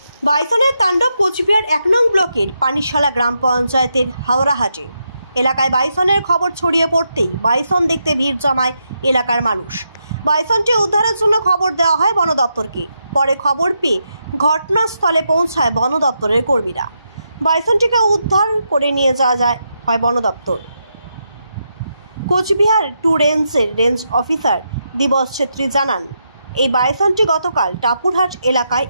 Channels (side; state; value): both; inverted; correlation -0.83